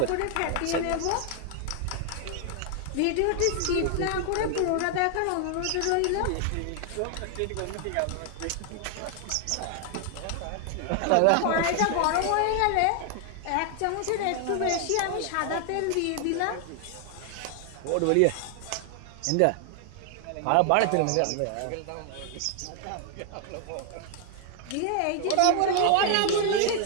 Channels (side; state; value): both; different; correlation 0.00